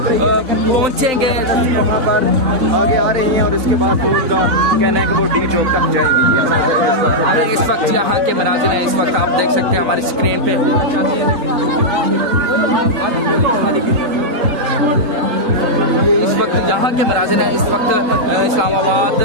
पहुँचेंगे, आगे आ रही हैं और उसके बाद उनका कहना है कि वो डी चौक तक जाएंगे। इस वक्त यहाँ के मनाजिर हैं, इस वक्त आप देख सकते हैं हमारी स्क्रीन पे। इस वक्त यहाँ के मनाजिर हैं, इस वक्त इस्लामाबाद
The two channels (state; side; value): late; left; 3.9 ms